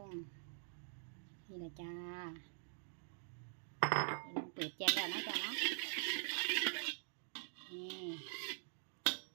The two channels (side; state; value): left; silent; digital silence